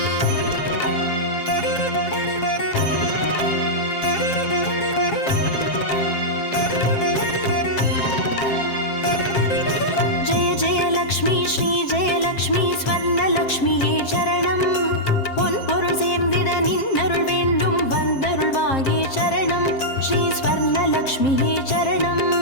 ஸ்வர்ணலக்ஷ்மியே சரணம் பொன்பொருள் சேர்ந்திட நின்னருள் வேண்டும் வந்தருள்வாயே சரணம் ஸ்ரீ ஸ்வர்ணலக்ஷ்மியே சரணம்.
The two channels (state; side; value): late; right; 7.5 ms